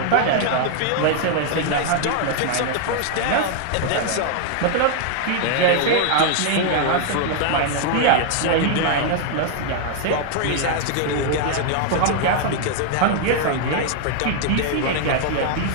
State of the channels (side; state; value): both; different; correlation 0.00